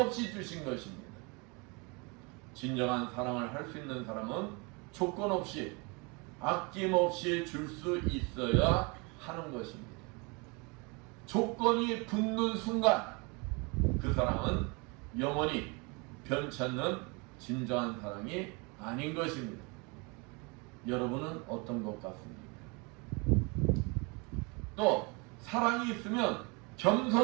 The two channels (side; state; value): left; quieter; 29.8 dB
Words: 주신 것입니다. 진정한 사랑을 할 수 있는 사람은 조건 없이 아낌없이 줄 수 있어야 하는 것입니다. 조건이 붙는 순간 그 사랑은 영원히 변치 않는 진정한 사랑이 아닌 것입니다. 여러분은 어떤 것 같습니까? 또 사랑이 있으면